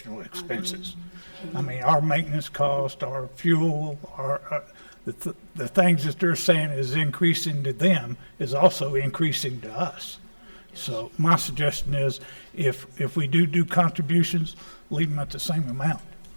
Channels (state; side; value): inverted; both; correlation -1.00